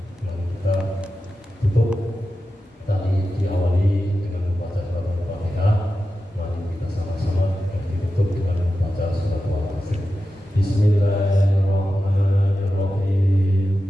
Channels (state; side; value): normal; both; correlation 0.92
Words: Yang kita tutup tadi diawali dengan membaca surat Al-Fatihah. Mari kita sama-sama yang ditutup dengan membaca surat Al-Fatihah. Bismillahirrahmanirrahim.